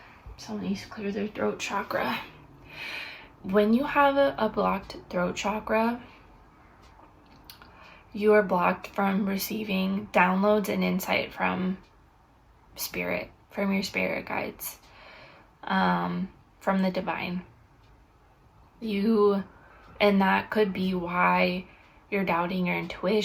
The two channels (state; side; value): identical; both; correlation 1.00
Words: needs to clear their throat chakra. When you have a blocked throat chakra, you are blocked from receiving downloads and insight from spirit, from your spirit guides, from the divine. And that could be why you're doubting your